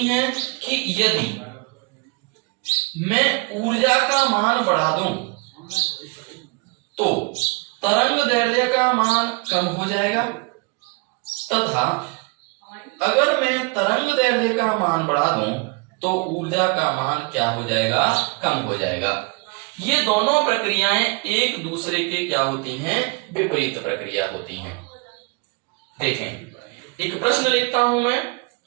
हैं कि यदि मैं ऊर्जा का मान बढ़ा दूं तो तरंग दैर्घ्य का मान कम हो जाएगा, तथा अगर मैं तरंग दैर्घ्य का मान बढ़ा दूं तो ऊर्जा का मान क्या हो जाएगा? कम हो जाएगा। ये दोनों प्रक्रियाएं एक दूसरे के क्या होती हैं? विपरीत प्रक्रिया होती हैं। देखें, एक प्रश्न लिखता हूं मैं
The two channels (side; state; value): left; quieter; 31.0 dB